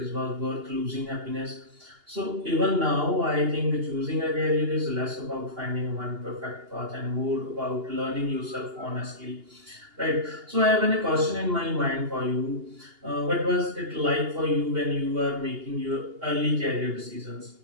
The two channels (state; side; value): late; left; 2.8 ms